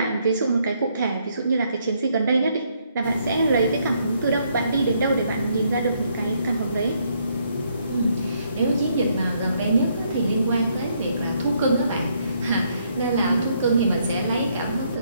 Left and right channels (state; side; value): inverted; both; correlation -0.72